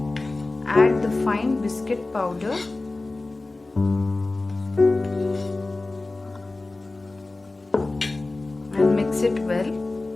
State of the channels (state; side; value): quieter; right; 3.2 dB